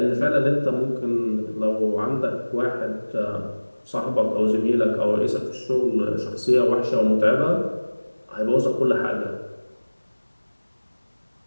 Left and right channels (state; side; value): inverted; both; correlation -1.00